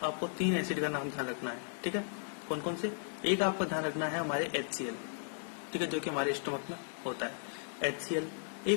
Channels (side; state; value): right; silent; 54 dB below the other